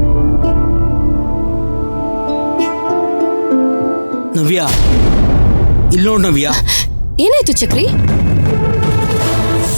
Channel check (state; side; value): inverted; both; correlation -1.00